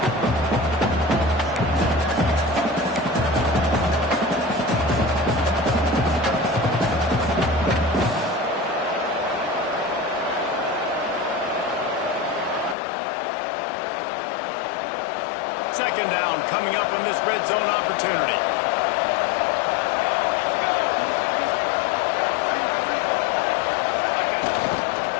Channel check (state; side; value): drops out; right; at 12.8 s